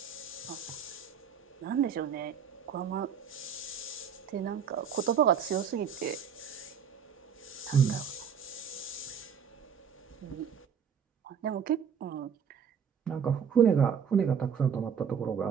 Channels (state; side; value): quieter; left; 7.3 dB